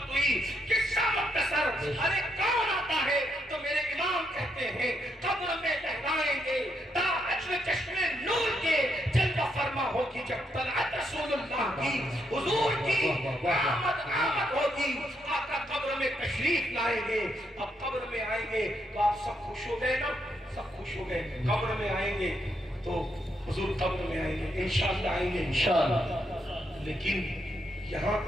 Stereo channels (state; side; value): normal; both; correlation 0.78